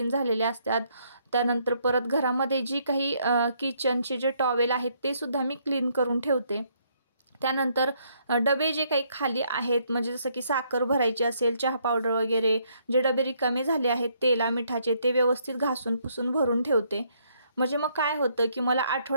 झालेले असतात. त्यानंतर परत घरामध्ये जी काही किचनचे जे टॉवेल आहेत ते सुद्धा मी क्लीन करून ठेवते. त्यानंतर डबे जे काही खाली आहेत, म्हणजे जसं की साखर भरायची असेल, चहा पावडर वगैरे जे डबे रिकामे झाले आहेत तेला मिठाचे, ते व्यवस्थित घासून पुसून भरून ठेवते. म्हणजे मग काय होतं की मला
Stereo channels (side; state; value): both; inverted; correlation -0.70